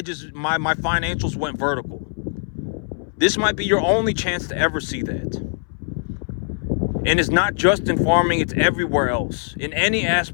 financials went vertical. This might be your only chance to ever see that. And it's not just in farming, it's everywhere else. In any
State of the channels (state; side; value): silent; right; 62 dB below the other